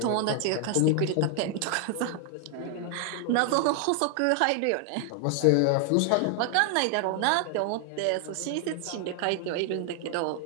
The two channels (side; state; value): both; different; correlation 0.00